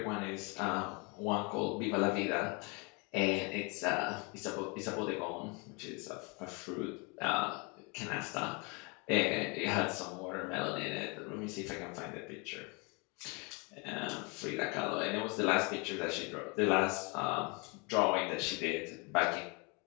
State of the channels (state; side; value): quieter; right; 31.0 dB